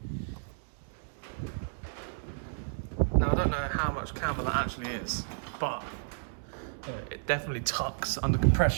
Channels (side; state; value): left; silent; digital silence